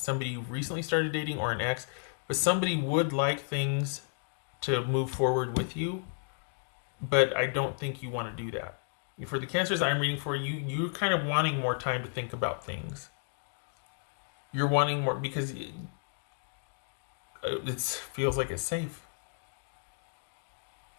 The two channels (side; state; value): right; silent; digital silence